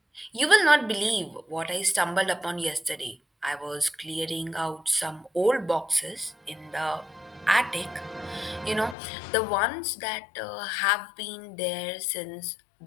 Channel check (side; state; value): right; drops out; at 9.0 s